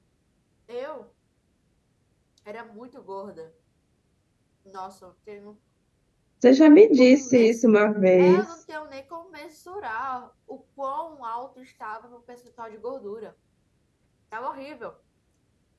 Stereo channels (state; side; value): identical; both; correlation 1.00